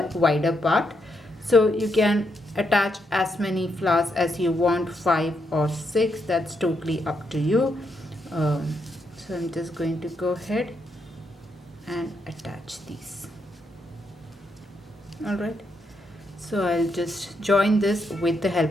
wider part. So you can attach as many flowers as you want, 5 or 6, that's totally up to you. So I'm just going to go ahead and attach these. Alright, so I'll just join this with the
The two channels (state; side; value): normal; both; correlation 0.80